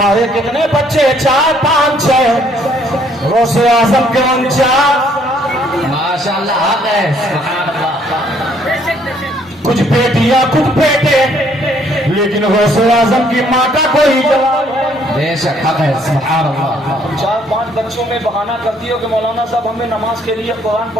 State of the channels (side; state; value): both; normal; correlation 0.65